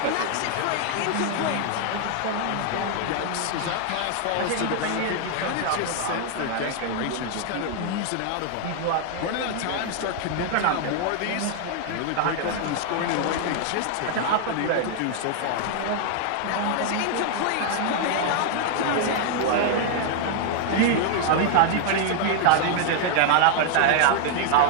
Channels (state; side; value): different; both; correlation 0.00